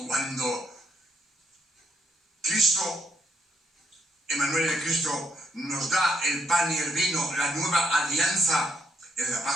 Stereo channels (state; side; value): normal; both; correlation 0.75